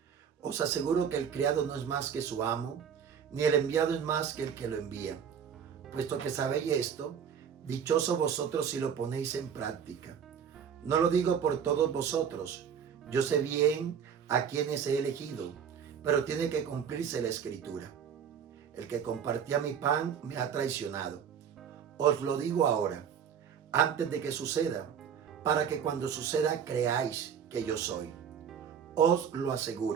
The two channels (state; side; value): quieter; left; 7.7 dB